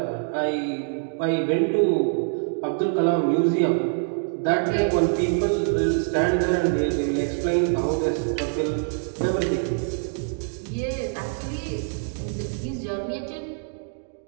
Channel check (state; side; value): silent; left; digital silence